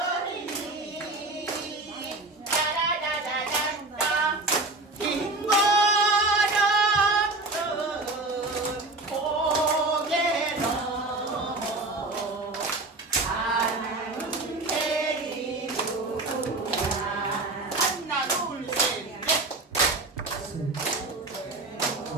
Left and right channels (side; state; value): left; quieter; 3.0 dB